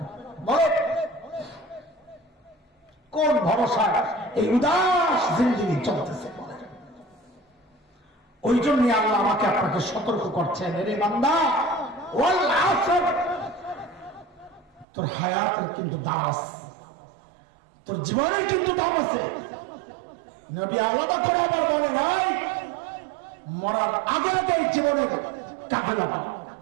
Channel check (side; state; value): left; drops out; at 14.9 s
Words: বলেন, কোন ভরসায় এই উদাস জিন্দেগি চলতেছে? বলেন। ওই জন্য আল্লাহ আমাকে আপনাকে সতর্ক করছেন, রে বান্দা, ওয়াল আসর, তোর হায়াতের কিন্তু দাম আছে, তোর জীবনের কিন্তু দাম আছে। নবী আলাদা করে আবার বলে নাই, মরার আগে আগে জীবনের কাজে লাগাও,